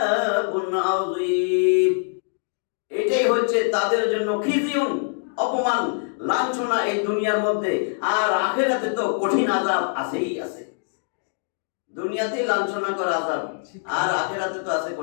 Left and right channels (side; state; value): right; silent; digital silence